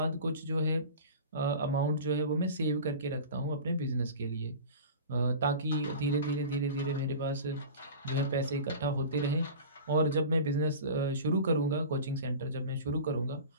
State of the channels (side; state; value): both; inverted; correlation -0.35